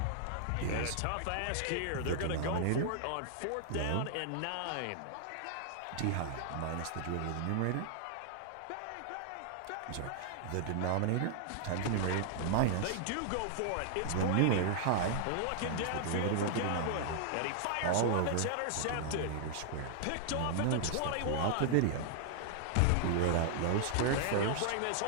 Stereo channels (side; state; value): both; different; correlation -0.01